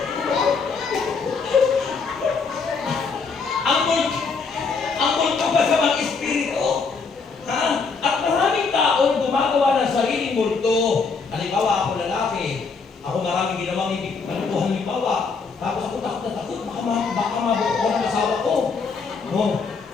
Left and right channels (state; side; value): quieter; right; 4.9 dB